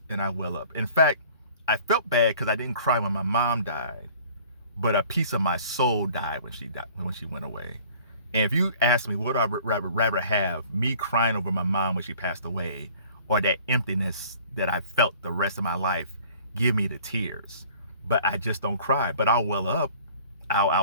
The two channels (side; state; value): both; inverted; correlation -0.50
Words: and I well up. In fact, I felt bad because I didn't cry when my mom died, but a piece of my soul died when she went away. And if you ask me what I would rather have, me crying over my mom when she passed away, or that emptiness that I felt the rest of my life, give me the tears. But I just don't cry. But I'll well up.